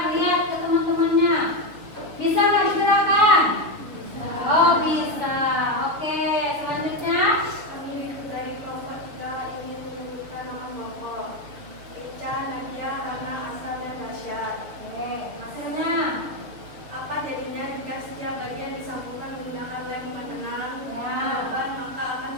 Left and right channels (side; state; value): left; late; 7.0 ms